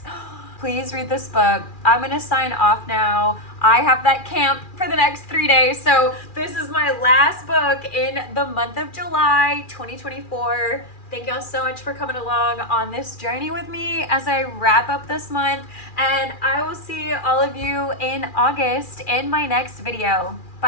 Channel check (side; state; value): right; late; 2.4 ms